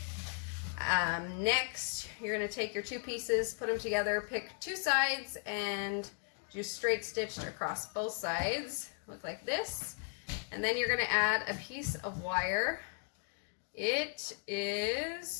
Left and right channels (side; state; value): right; silent; 54 dB below the other